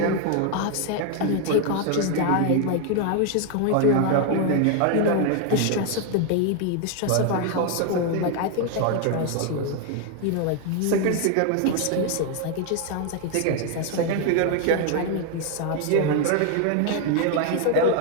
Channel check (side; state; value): both; different; correlation 0.00